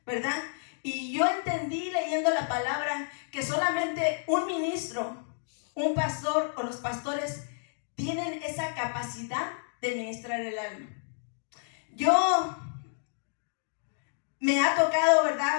¿verdad? Y yo entendí leyendo la palabra que solamente un ministro, un pastor o los pastores tienen esa capacidad de ministrar el alma. Yo me ha tocado,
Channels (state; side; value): silent; right; digital silence